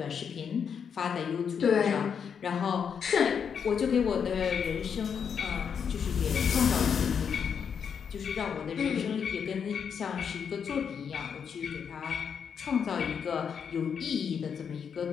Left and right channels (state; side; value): quieter; right; 7.1 dB